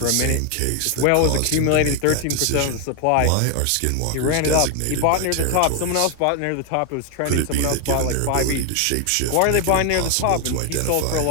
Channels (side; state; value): both; different; correlation 0.01